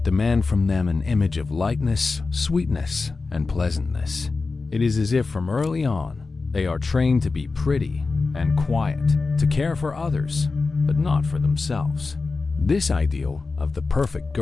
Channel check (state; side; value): quieter; right; 4.0 dB